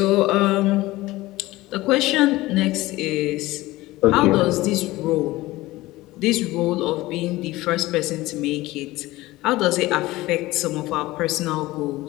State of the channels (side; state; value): right; quieter; 18.5 dB